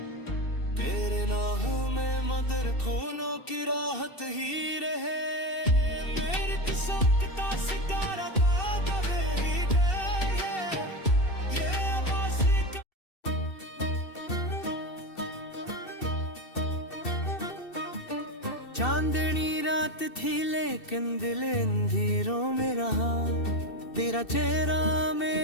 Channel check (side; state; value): right; late; 2.7 ms